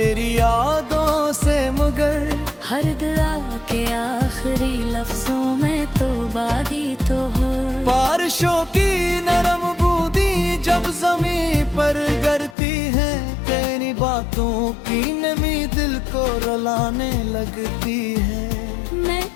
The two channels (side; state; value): right; drops out; at 12.6 s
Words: यादों से, मगर हर दुआ के आखिरी लफ्जों में तो बादी तो हो। बारिशों की नरम बूंदी जब जमीन पर गिरती है, तेरी बातों की नमी दिल को रुलाने लगती है। मैं